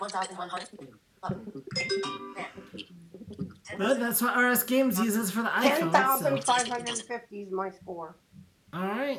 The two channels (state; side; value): identical; both; correlation 1.00